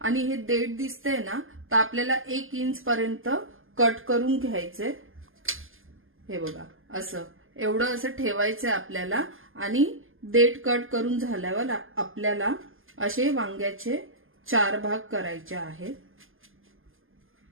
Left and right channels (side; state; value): left; late; 0.59 ms